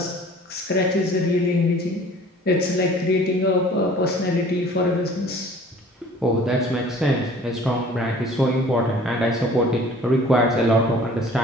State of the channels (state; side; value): normal; both; correlation 0.49